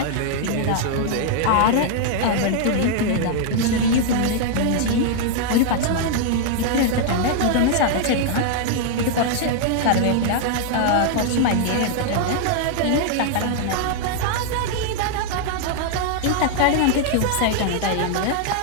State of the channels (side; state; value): both; different; correlation -0.01